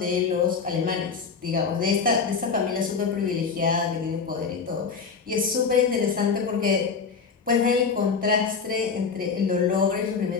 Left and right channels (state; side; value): quieter; right; 5.4 dB